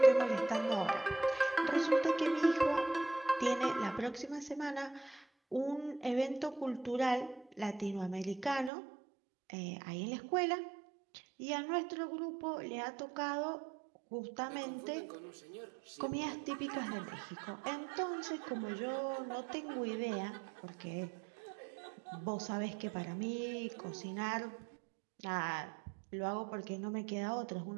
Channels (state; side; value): drops out; left; at 8.7 s